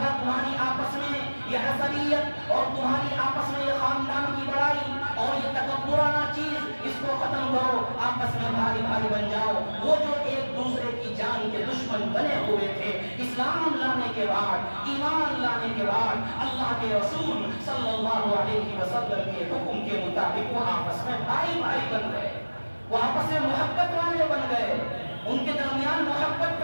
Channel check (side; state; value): both; inverted; correlation -1.00